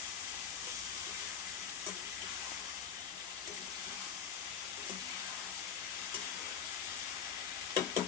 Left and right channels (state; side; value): quieter; right; 7.5 dB